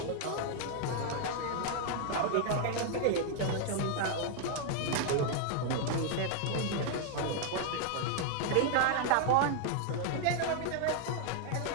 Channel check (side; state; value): both; different; correlation 0.00